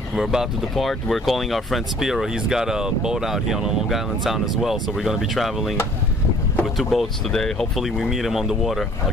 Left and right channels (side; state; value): both; normal; correlation 0.54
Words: We're about to depart. We're calling our friend Spiro. He's got a boat out here on Long Island Sound as well. So we're gonna be traveling with 2 boats today. Hopefully we meet him on the water. I'll